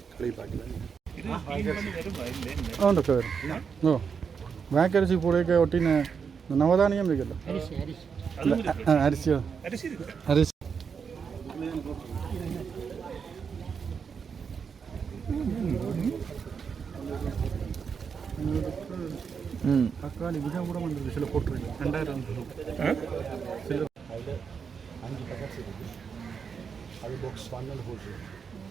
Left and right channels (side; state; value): left; quieter; 6.3 dB